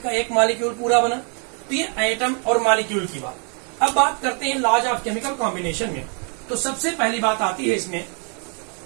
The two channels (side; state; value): left; quieter; 39.8 dB